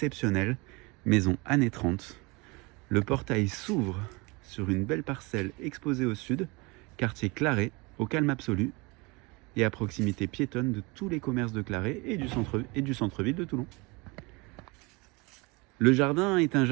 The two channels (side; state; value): left; quieter; 26.4 dB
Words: maison années 30. Le portail s'ouvre sur une belle parcelle exposée au sud, quartier Claret, au calme absolu, et à proximité piétonne de tous les commerces de Claret et du centre-ville de Toulon. Le jardin est un